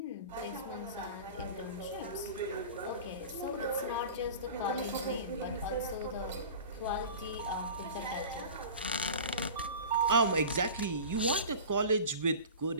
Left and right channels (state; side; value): inverted; both; correlation -0.36